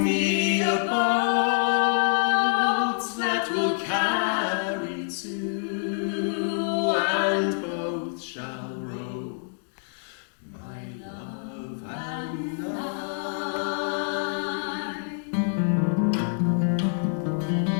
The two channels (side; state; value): right; silent; digital silence